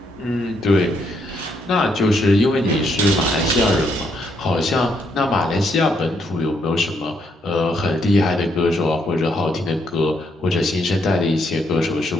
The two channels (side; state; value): both; normal; correlation 0.74